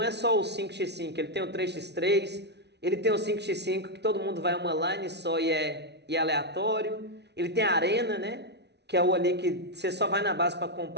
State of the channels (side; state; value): left; late; 0.50 ms